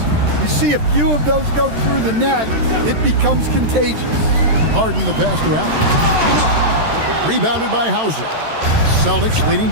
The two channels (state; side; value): late; left; 13 ms